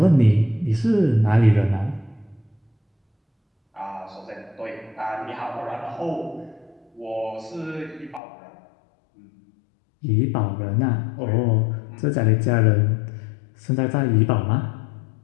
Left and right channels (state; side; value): drops out; right; at 8.2 s